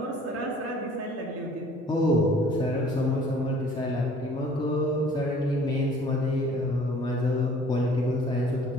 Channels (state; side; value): normal; both; correlation 0.53